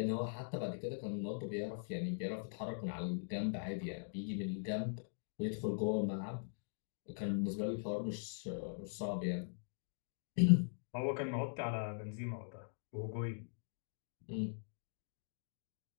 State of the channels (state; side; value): silent; right; digital silence